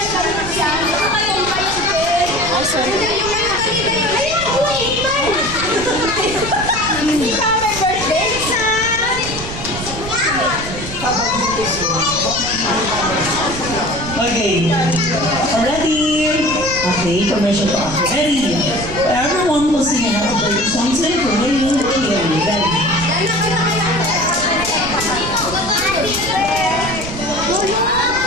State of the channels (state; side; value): noise; right; rumble, 10 dB below the sound